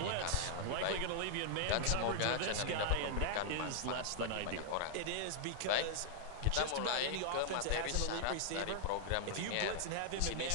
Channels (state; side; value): different; both; correlation -0.01